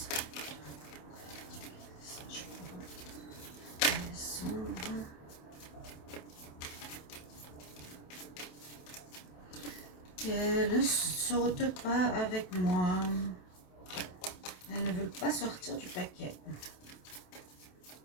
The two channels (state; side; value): late; right; 27 ms